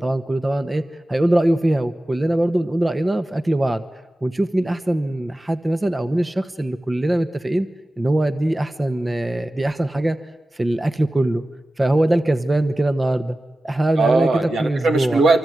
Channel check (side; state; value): both; normal; correlation 0.95